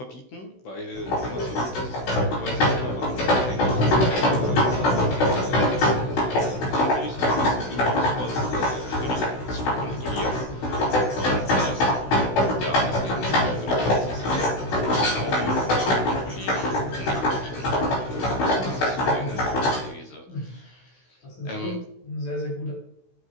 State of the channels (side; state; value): right; late; 16 ms